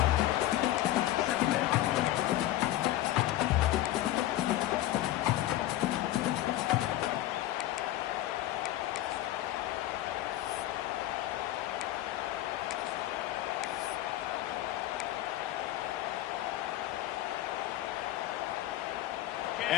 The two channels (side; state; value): right; quieter; 14.6 dB